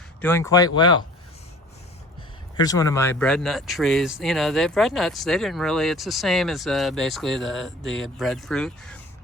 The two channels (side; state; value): both; normal; correlation 0.46